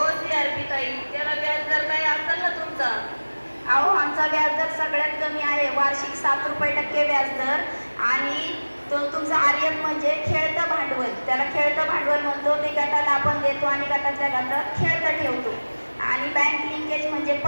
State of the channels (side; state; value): both; inverted; correlation -1.00